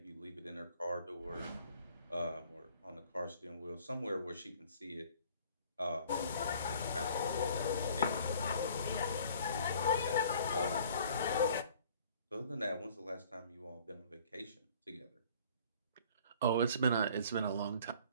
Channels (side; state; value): both; inverted; correlation -0.53